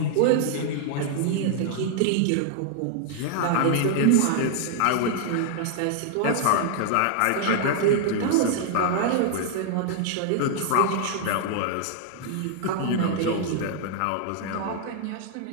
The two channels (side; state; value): both; different; correlation 0.00